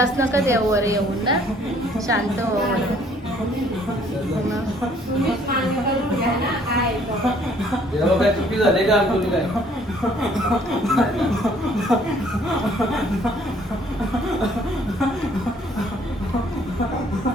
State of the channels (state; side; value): normal; both; correlation 0.61